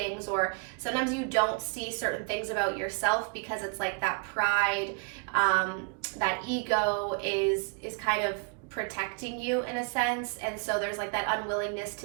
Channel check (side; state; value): left; quieter; 36.1 dB